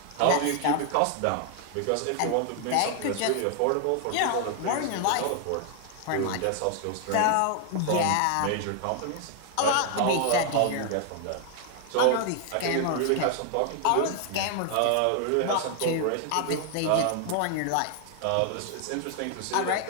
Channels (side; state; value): both; different; correlation 0.00